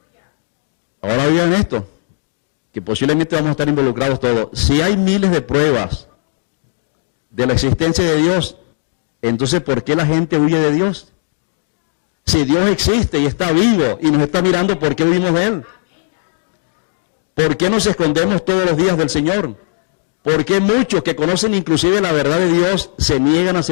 Ahora oigan esto, que posiblemente vamos a estar involucrados todos. Si hay miles de pruebas de la existencia de Dios, entonces ¿por qué la gente huye de Dios? Si Dios existe y está vivo y nos está mirando, ¿por qué huimos de Él? ¿Por qué nos escondemos todos los días del Señor? ¿Por qué muchos que conocen inclusive la verdad de Dios se niegan a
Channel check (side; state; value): right; silent; 58 dB below the other